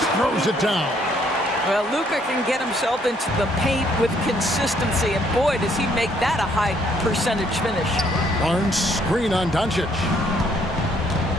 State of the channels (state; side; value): normal; both; correlation 0.67